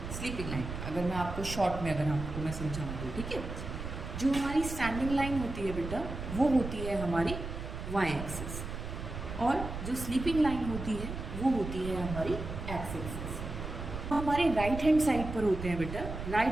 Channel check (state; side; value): noise; right; rumble, 7 dB below the sound